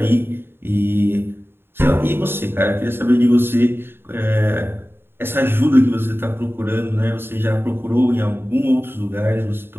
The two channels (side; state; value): left; late; 0.11 ms